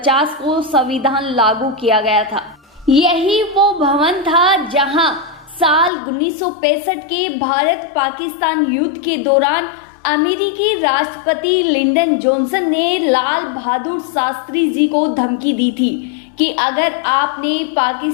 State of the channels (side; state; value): right; drops out; at 5.9 s